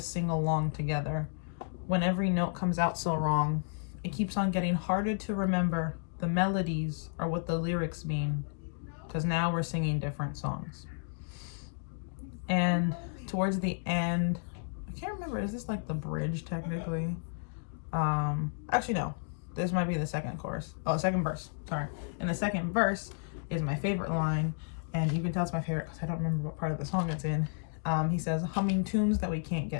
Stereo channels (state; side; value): silent; right; digital silence